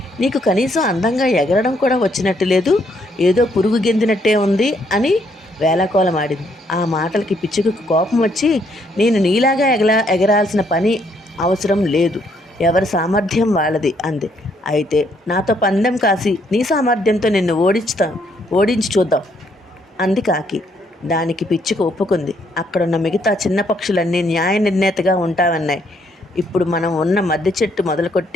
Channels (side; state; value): both; normal; correlation 0.70